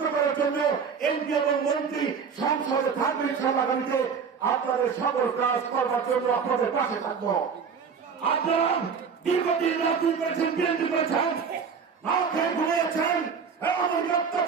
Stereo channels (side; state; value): left; quieter; 6.2 dB